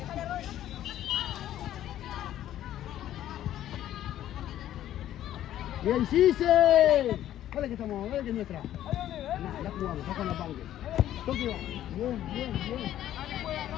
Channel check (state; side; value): quieter; right; 12.3 dB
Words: ¡Bien, Gise! Dale que estamos, dale que es nuestra. La jugamos, sacan la Panque. Toque va. Bien. Bien.